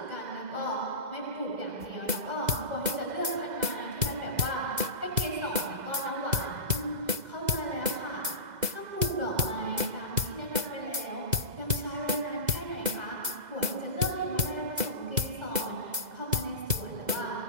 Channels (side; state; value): left; late; 2.0 ms